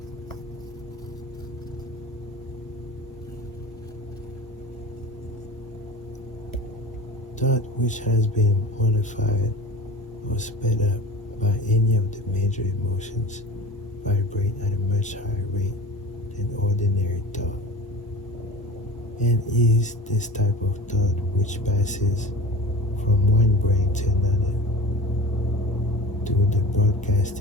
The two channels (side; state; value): both; normal; correlation 0.34